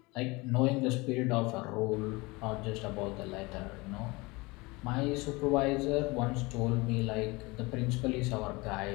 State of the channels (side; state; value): right; quieter; 24.3 dB